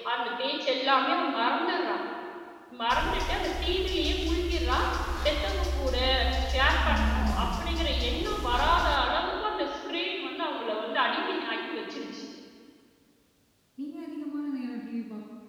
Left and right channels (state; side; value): identical; both; correlation 1.00